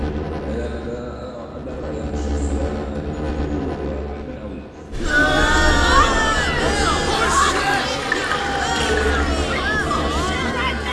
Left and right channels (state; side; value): identical; both; correlation 1.00